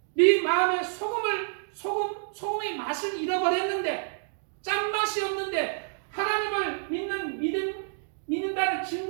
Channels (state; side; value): silent; left; digital silence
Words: 네 마음에 소금의 맛을 잃어버렸는데, 짠맛이 없는데, 하나님을 믿는다는